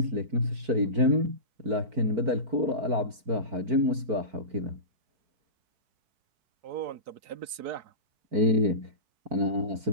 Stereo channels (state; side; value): late; left; 4.5 ms